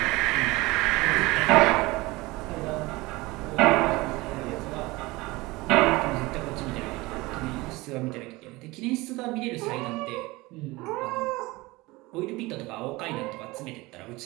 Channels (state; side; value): quieter; left; 21.8 dB